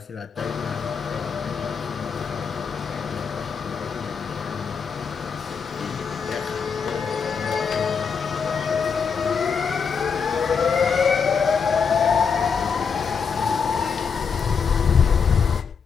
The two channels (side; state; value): right; quieter; 6.1 dB